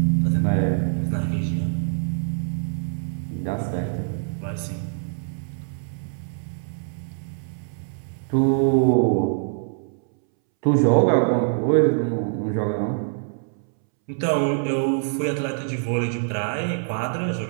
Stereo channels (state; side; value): silent; left; 62 dB below the other